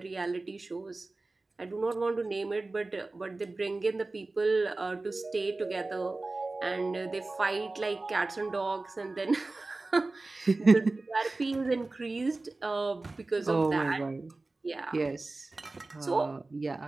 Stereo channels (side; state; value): left; quieter; 3.3 dB